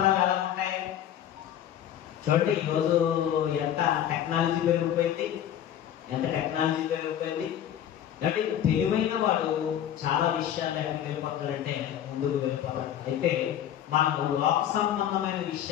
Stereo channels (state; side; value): quieter; right; 10.6 dB